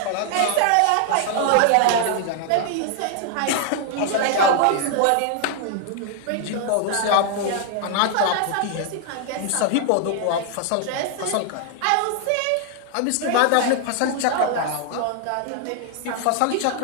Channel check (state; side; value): different; both; correlation 0.00